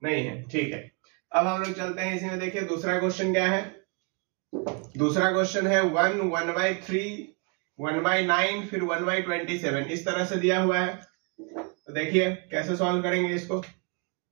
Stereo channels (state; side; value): quieter; left; 34.5 dB